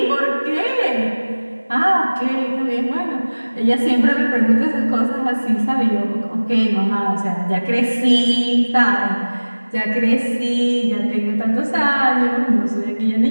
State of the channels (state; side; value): inverted; both; correlation -1.00